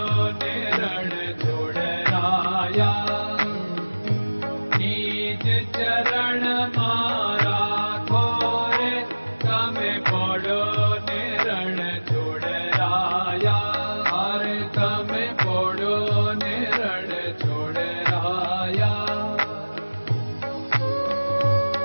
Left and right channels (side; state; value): both; inverted; correlation -1.00